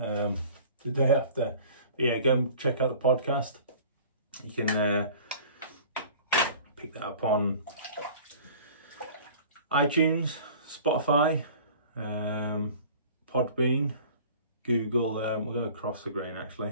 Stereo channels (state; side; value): inverted; both; correlation -0.45